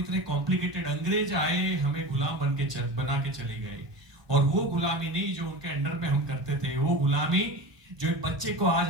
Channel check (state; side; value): late; left; 1.2 ms